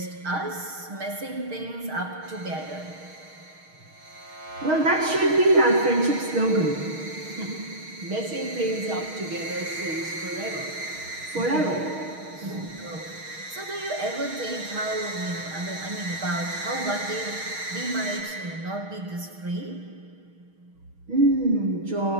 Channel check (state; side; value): late; left; 6.4 ms